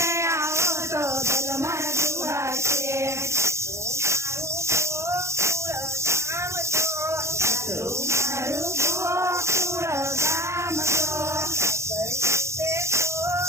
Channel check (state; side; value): late; left; 0.14 ms